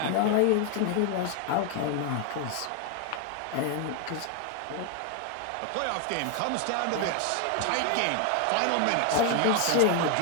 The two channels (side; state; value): both; different; correlation 0.00